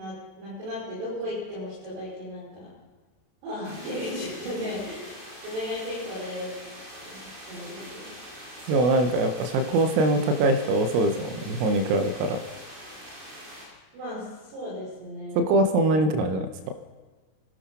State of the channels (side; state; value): left; late; 32 ms